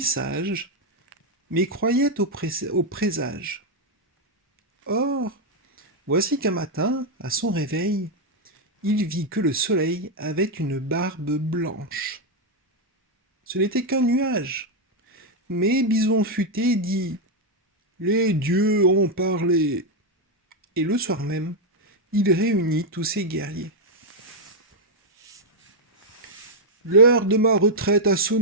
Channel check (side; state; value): both; normal; correlation 0.00